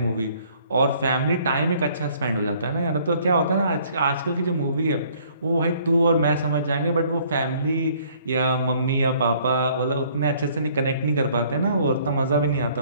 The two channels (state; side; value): inverted; both; correlation -0.60